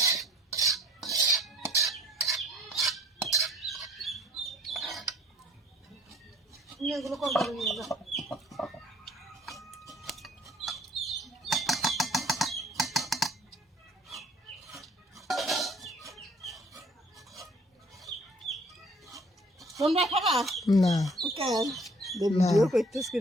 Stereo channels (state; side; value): normal; both; correlation 0.55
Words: নিয়ে এগুলো কোন করে নিয়ে যা তোমরা খাবা না কেন ভিডিও করতেছ